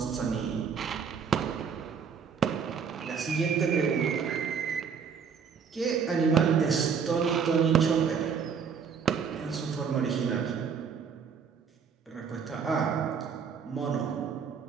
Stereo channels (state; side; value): quieter; left; 6.4 dB